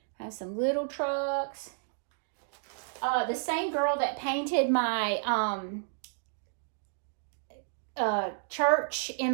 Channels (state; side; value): silent; left; digital silence